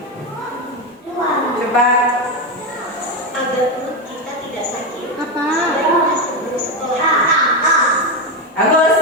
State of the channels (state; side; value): normal; both; correlation 0.12